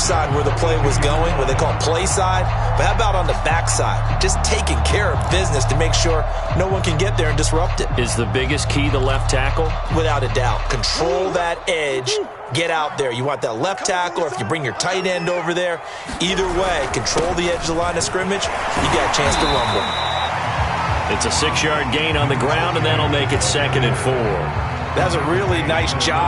side where the play was going, what they call play side. But how about on the back side? Just taking care of business to make sure no one can get there and disrupt it. Is the biggest key the left tackle? Without a doubt. Control that edge. Get out there. You want that left tackle, or if you bring your tight end over there, either way, control the edge of the line of scrimmage, you got a chance to rumble. It's a 6-yard gain on the ground, and that'll make it 2nd and 4. That's a really nice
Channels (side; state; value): both; identical; correlation 1.00